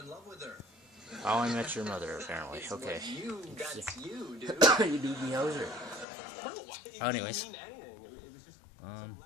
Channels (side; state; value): right; drops out; at 6.1 s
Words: love with her. How I Met Your Mother, apparently. Okay. That's you, dude. You do me houser. Anyways. Didn't mean anything. It was just some